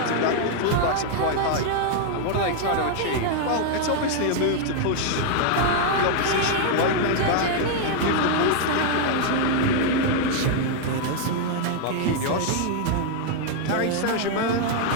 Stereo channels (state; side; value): different; both; correlation 0.00